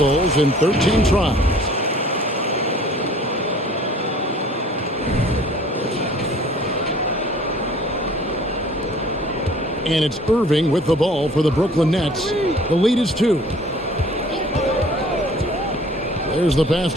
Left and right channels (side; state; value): both; normal; correlation 0.51